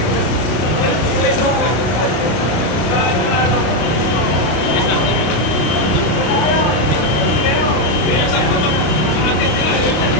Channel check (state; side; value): late; right; 33 ms